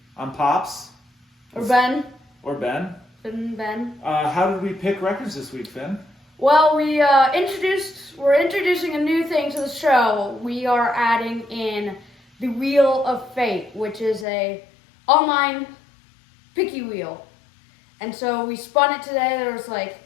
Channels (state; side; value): drops out; right; at 14.2 s